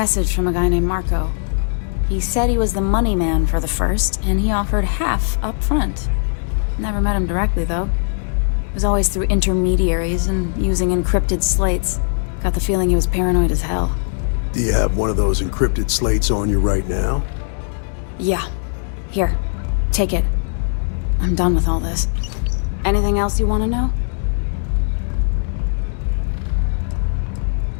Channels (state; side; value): silent; right; digital silence